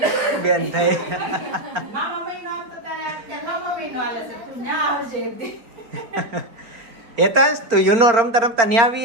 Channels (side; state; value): left; late; 4.4 ms